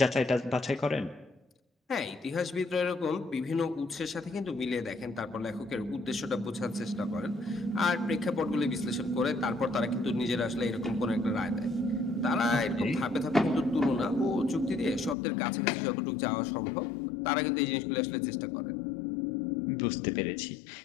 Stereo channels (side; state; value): right; drops out; at 15.2 s